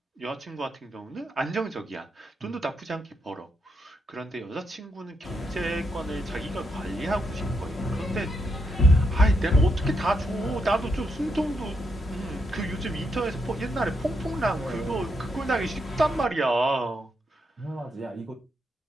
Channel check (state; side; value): normal; both; correlation 0.80